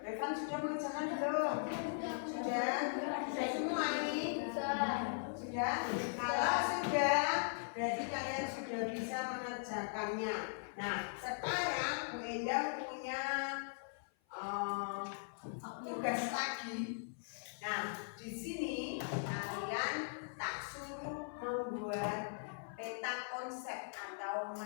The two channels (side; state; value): right; silent; 51 dB below the other